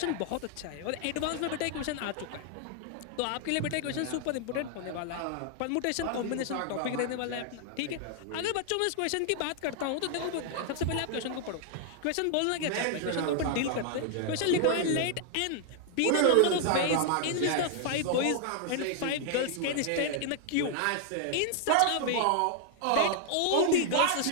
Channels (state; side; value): different; both; correlation 0.00